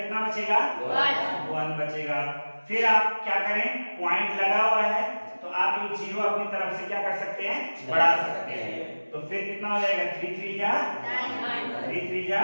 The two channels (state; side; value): inverted; both; correlation -1.00